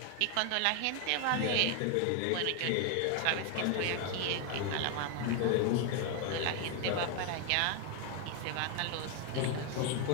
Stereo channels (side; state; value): both; different; correlation 0.01